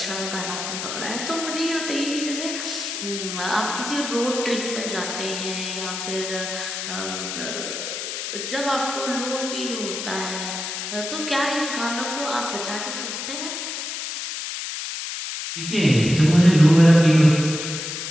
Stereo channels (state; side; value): noise; left; hiss, 5 dB below the sound